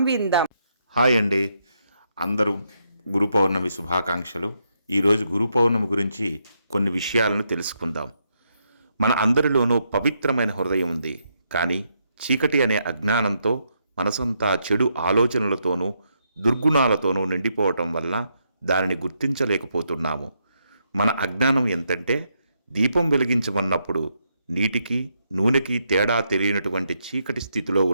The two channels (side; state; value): both; inverted; correlation -0.79